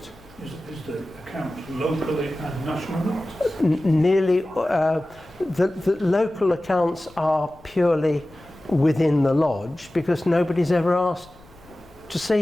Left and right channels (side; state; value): left; noise; rumble, 26 dB below the sound